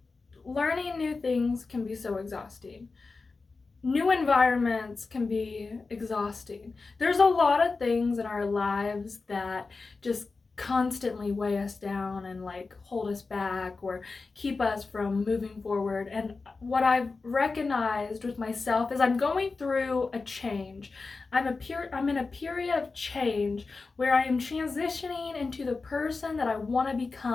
Learning new things can be so exhausting. New environments can be exhausting. There's a lot of things in our lives that just constantly weigh us down and like hold us back or keep us from moving forward. And what I've recognized with myself is I'm going through a change. I'm in a period of change where I am transitioning into the person that I want to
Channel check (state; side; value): quieter; right; 4.1 dB